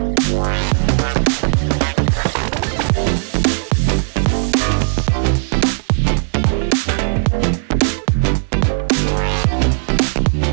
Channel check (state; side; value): silent; left; digital silence